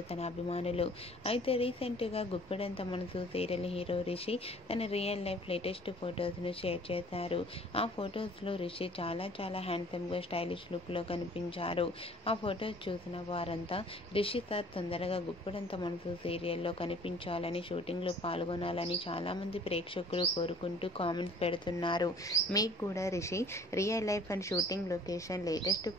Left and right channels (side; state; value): both; normal; correlation 0.52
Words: తన అభిమానులు. అయితే రీసెంట్గా గుప్పడంత మనసు సీరియల్ హీరో రిషి తన రియల్ లైఫ్ లేటెస్ట్ ఫొటోస్ను షేర్ చేశారు. ఆ ఫొటోస్లో రిషి చాలా హ్యాండ్సమ్గా స్టైలిష్ లుక్లో కనిపించారు. ఆ ఫొటోస్ చూసిన వారంతా రిషి సార్ తొందరగా గుప్పడంత మనసు సీరియల్లో కనిపించాలని, షూటింగ్లో పాల్గొనాలని చాలామంది ప్రేక్షకులు కోరుకుంటూ కామెంట్స్ పెడుతున్నారు. మీకు కూడా Rishi real life and shooting location latest